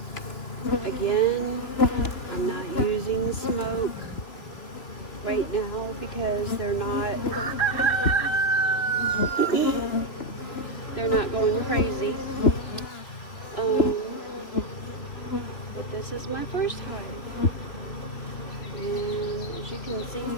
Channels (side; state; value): right; late; 2.9 ms